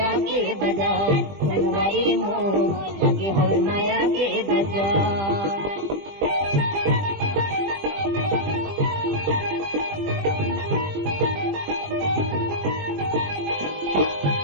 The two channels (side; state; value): left; late; 20 ms